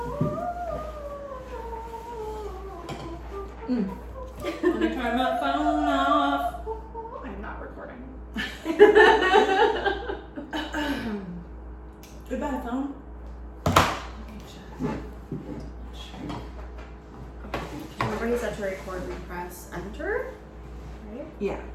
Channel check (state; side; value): identical; both; correlation 1.00